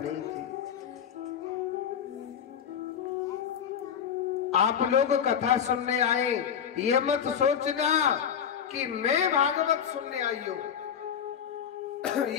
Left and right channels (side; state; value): right; quieter; 8.2 dB